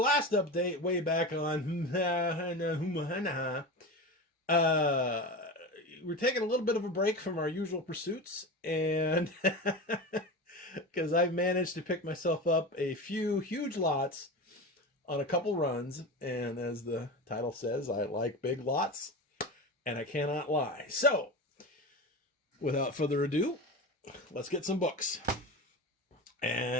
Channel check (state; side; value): normal; both; correlation 0.26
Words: update way back on we're taking a little bit of a break from our usual pursuits, and because I've managed to pick myself up a few huge lots on a couple runs, and as the title says, I like big lots, and I cannot lie. So, without further ado, let's get some books.